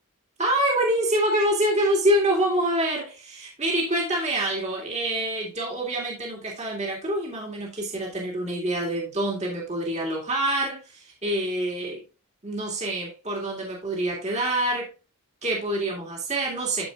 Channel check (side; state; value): both; normal; correlation 0.21